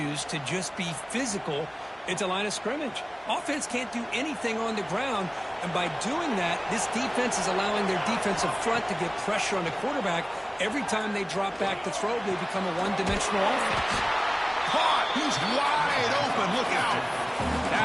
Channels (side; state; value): both; identical; correlation 1.00